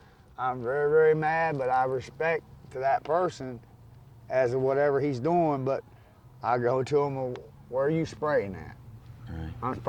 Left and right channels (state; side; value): identical; both; correlation 1.00